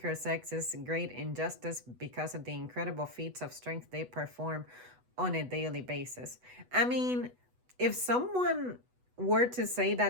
sex is great injustice because of the incredible feats of strength they perform on a daily basis. I mean, if someone were to say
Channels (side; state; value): left; late; 8.1 ms